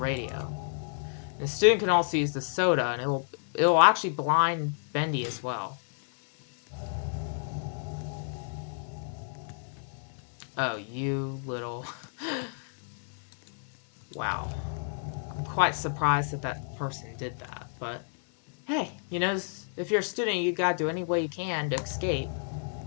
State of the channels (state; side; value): silent; right; 57 dB below the other